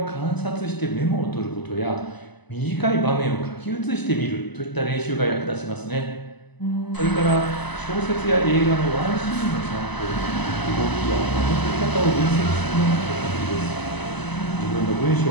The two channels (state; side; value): late; right; 1.0 ms